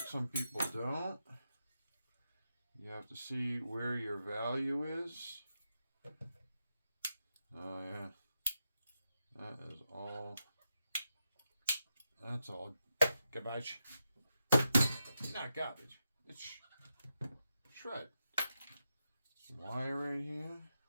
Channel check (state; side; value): inverted; both; correlation -0.87